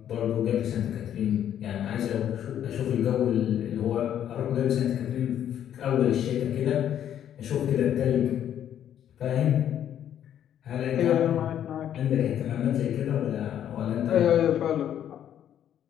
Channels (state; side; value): quieter; right; 10.3 dB